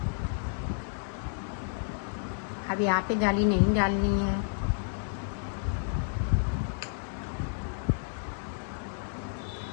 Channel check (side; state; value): right; silent; 57 dB below the other